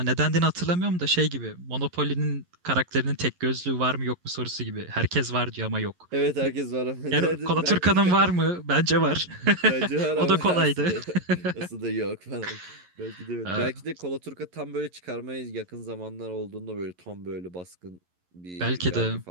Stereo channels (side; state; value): left; late; 11 ms